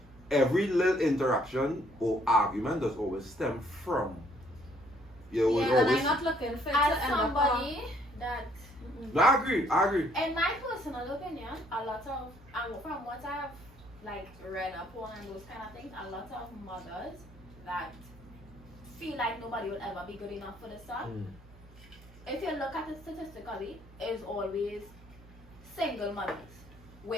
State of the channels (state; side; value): normal; both; correlation 0.65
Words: every little interaction or argument does always stem from. You know, Yeah, and always. I'm not looking for it as to end up somebody that No, I agree. in my personal opinion, a lot of from what I've like read upon and those kind of things, a lot of mothers that feel like nobody will ever be good enough for the son. If you look at it statistically, is always single mothers,